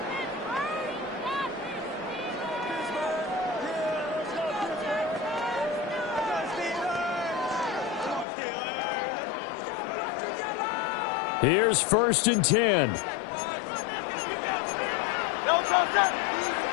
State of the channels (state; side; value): drops out; right; at 8.2 s